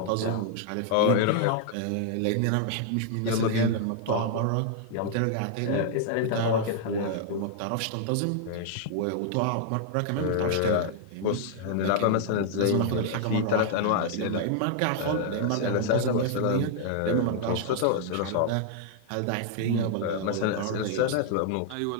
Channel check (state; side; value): different; both; correlation -0.01